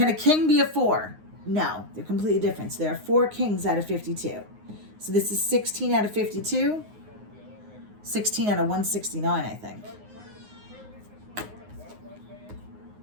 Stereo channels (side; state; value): left; late; 9.6 ms